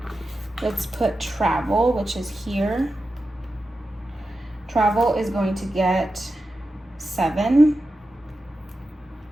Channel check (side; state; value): both; normal; correlation 0.91